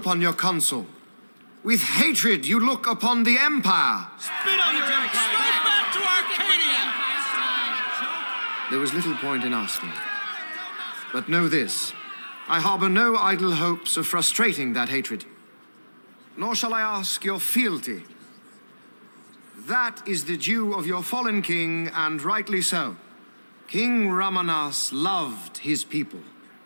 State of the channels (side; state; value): both; inverted; correlation -1.00